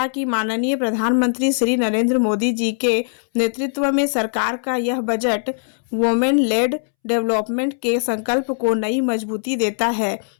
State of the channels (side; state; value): right; silent; 66 dB below the other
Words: कि माननीय प्रधानमंत्री श्री नरेंद्र मोदी जी के नेतृत्व में सरकार का यह बजट वुमेन लेड डेवलपमेंट के संकल्प को नई मजबूती देता है,